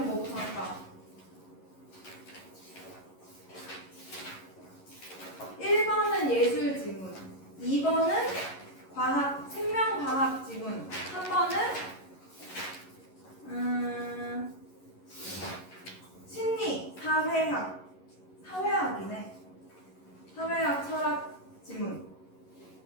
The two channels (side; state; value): right; late; 11 ms